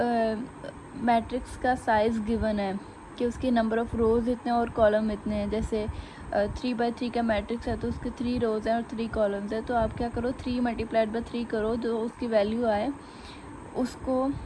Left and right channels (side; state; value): both; identical; correlation 1.00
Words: मैट्रिक्स का साइज़ गिवन है कि उसके नंबर ऑफ़ रोज़ इतने और कॉलम इतने हैं, जैसे 3 by 3 का मैट्रिक्स है तो उसके 3 रोज़ हैं और 3 कॉलम्स हैं, तो आप क्या करो 3 मल्टीप्लाइड बाई 3 करो, जो उसकी वैल्यू आए उसको